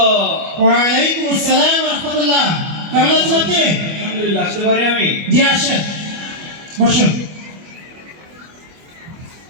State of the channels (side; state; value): left; late; 25 ms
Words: ওয়ালাইকুম আসসালাম রাহমাতুল্লাহ। কেমন আছেন আপনি? আলহামদুলিল্লাহ। আসতে পারি আমি? জি আসেন, বসুন।